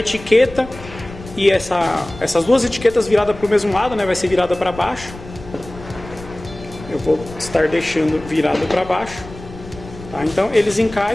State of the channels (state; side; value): noise; left; rumble, 16 dB below the sound